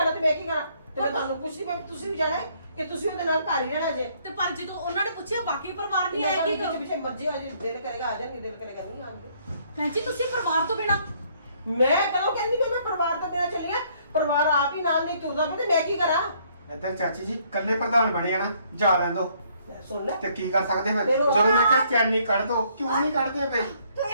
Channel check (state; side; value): inverted; both; correlation -0.65